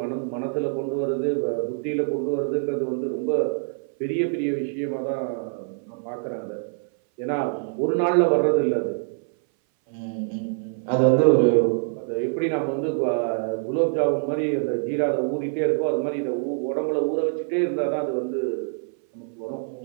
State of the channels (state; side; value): silent; left; 59 dB below the other